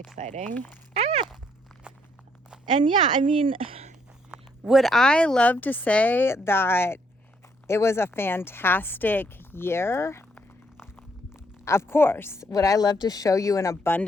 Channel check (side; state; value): both; normal; correlation 0.71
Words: Ah! And yeah, I mean, would I love to say that it was a fantastic year? Of course. Would I love to show you an